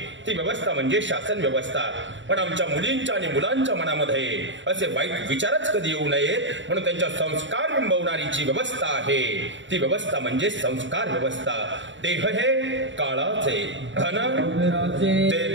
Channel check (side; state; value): left; late; 0.54 ms